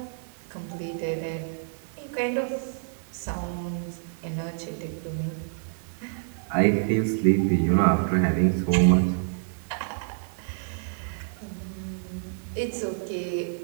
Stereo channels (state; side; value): silent; left; digital silence